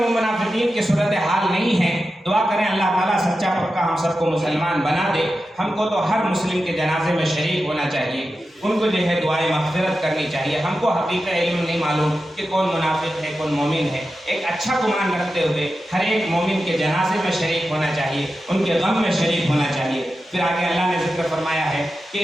منافقین کی صورتحال نہیں ہے۔ دعا کریں اللہ تعالیٰ سچا پکا ہم سب کو مسلمان بنا دے۔ ہم کو تو ہر مسلم کے جنازے میں شریک ہونا چاہیے، ان کو جو ہے دعائیں مغفرت کرنی چاہیے۔ ہم کو حقیقت علم نہیں معلوم کہ کون منافق ہے کون مومن ہے۔ ایک اچھا گمان رکھتے ہوئے ہر ایک مومن کے جنازے میں شریک ہونا چاہیے، ان کے غم میں شریک ہونا چاہیے۔ پھر آگے اللہ نے ذکر فرمایا ہے کہ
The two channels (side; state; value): both; normal; correlation 0.91